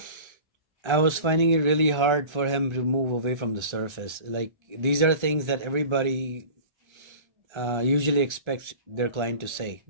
I was finding it really hard for him to move away from the surface. Like, these are things that everybody usually expects their client to say,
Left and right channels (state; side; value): late; left; 1.3 ms